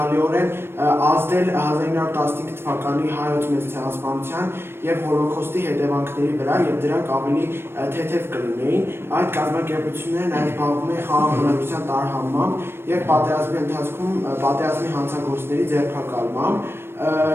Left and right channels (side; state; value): left; late; 0.12 ms